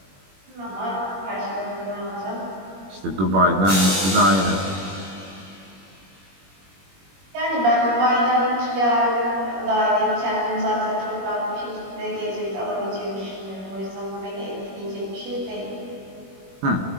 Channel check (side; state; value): left; late; 21 ms